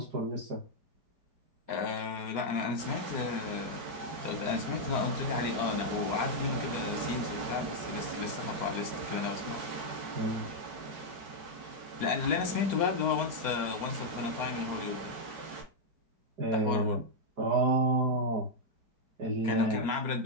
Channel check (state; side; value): late; left; 4.2 ms